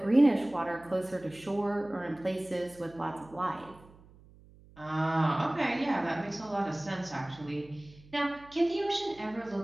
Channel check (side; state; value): right; noise; hum, 24 dB below the sound